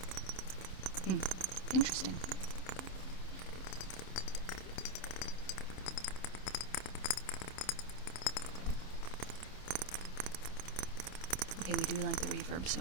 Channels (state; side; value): late; right; 27 ms